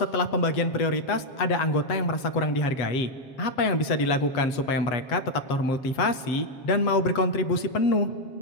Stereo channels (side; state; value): right; late; 7.5 ms